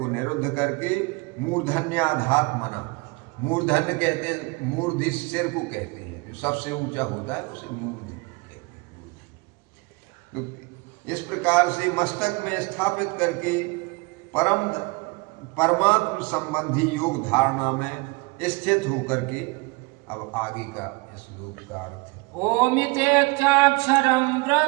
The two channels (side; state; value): left; quieter; 26.4 dB